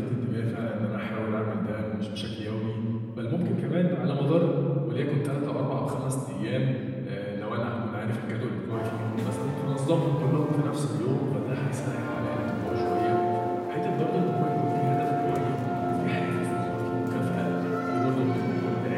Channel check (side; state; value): both; identical; correlation 1.00